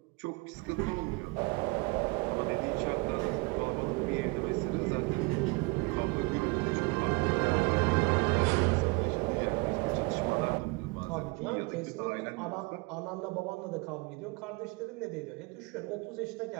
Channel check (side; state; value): left; quieter; 27.0 dB